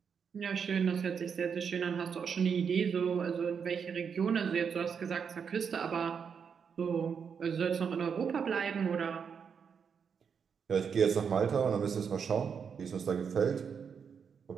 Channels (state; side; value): quieter; left; 6.7 dB